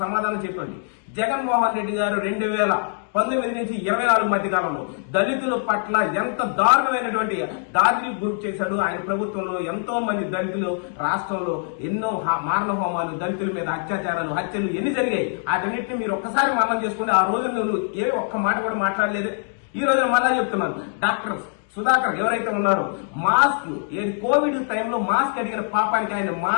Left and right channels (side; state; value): right; silent; 63 dB below the other